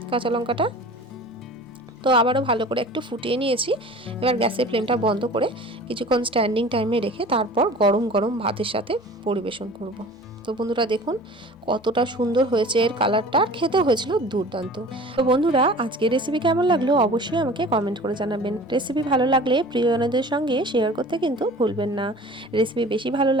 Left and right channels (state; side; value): normal; both; correlation 0.42